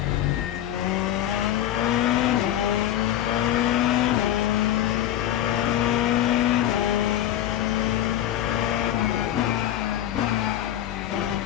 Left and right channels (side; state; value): right; quieter; 12.0 dB